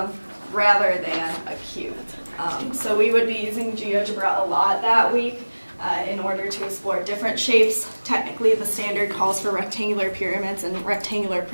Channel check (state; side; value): inverted; both; correlation -1.00